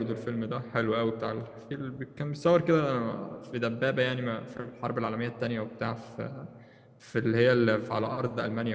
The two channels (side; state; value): both; identical; correlation 1.00